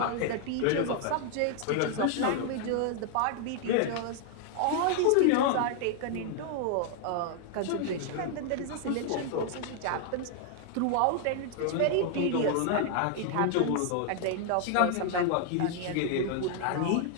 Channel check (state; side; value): different; both; correlation 0.00